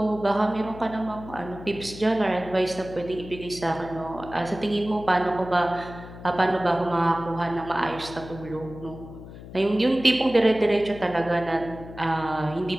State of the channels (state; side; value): noise; left; hum, 15 dB below the sound